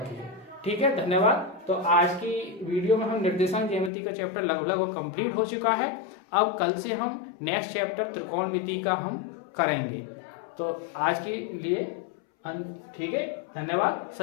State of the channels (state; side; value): drops out; right; at 3.9 s